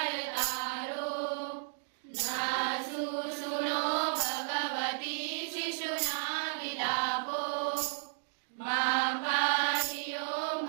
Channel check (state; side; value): silent; left; digital silence